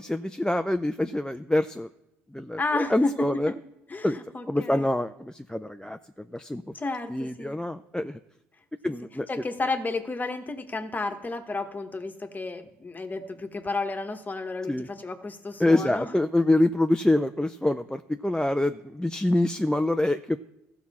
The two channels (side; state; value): both; normal; correlation 0.94